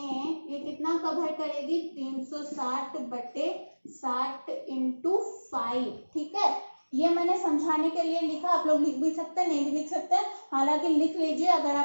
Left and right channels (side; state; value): both; inverted; correlation -1.00